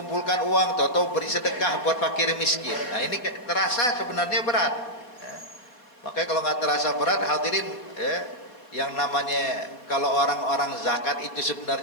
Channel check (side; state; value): right; late; 4.1 ms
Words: uang, tahu beri sedekah buat fakir miskin. Nah ini terasa sebenarnya berat. Ya. Makanya kalau nggak terasa berat, hadirin, yang namanya kalau orang-orang zakat itu